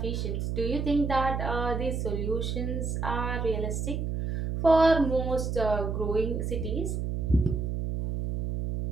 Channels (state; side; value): noise; right; hum, 2 dB below the sound